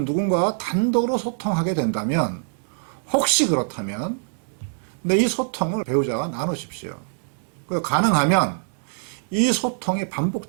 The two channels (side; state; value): left; silent; digital silence